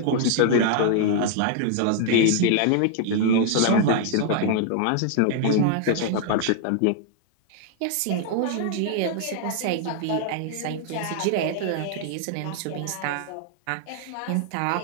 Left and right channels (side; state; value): both; different; correlation 0.00